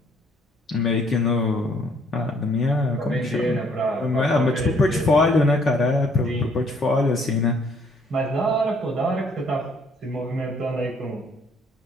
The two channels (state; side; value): normal; both; correlation 0.64